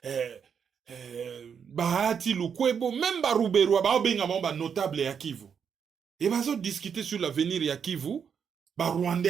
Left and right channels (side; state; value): left; quieter; 7.1 dB